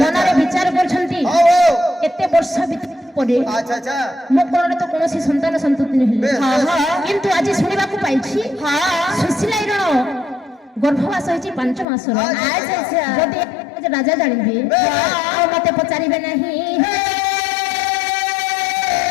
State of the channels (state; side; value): drops out; right; at 11.9 s